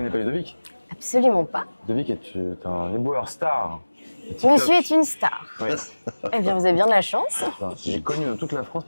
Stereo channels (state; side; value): inverted; both; correlation -1.00